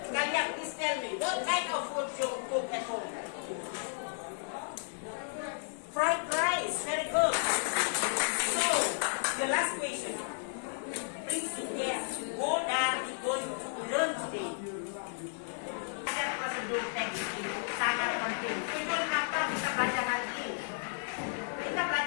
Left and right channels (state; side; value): silent; right; 56 dB below the other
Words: Kalian please tell me, what kind of food you cook at home? Fried rice, very good. So, the last question. Please guess, what are we going to learn today? Ada prosedur teks ini sangat penting. Itu kenapa kita belajar hari ini. Kita